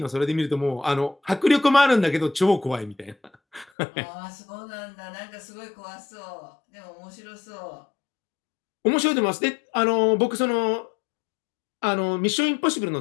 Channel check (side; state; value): right; drops out; at 3.7 s